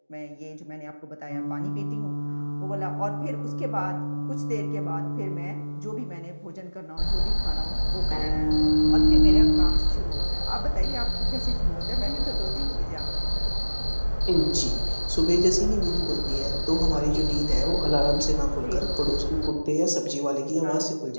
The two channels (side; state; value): both; inverted; correlation -1.00